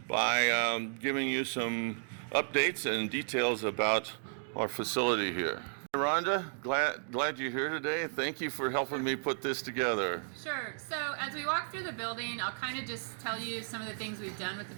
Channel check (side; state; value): left; silent; digital silence